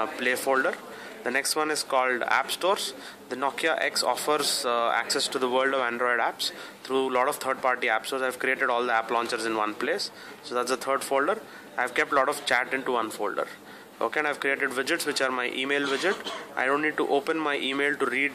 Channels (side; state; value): both; identical; correlation 1.00